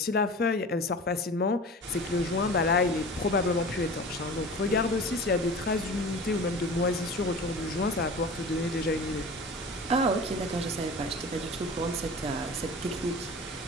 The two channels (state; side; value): normal; both; correlation 0.37